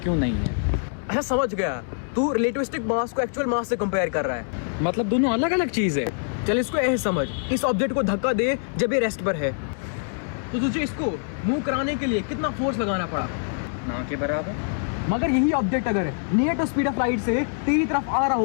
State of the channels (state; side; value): silent; right; digital silence